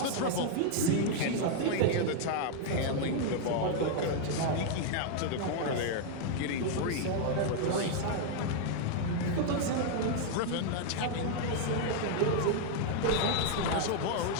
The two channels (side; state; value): both; different; correlation 0.00